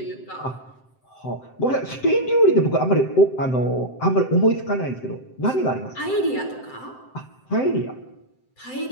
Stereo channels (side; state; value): right; late; 7.7 ms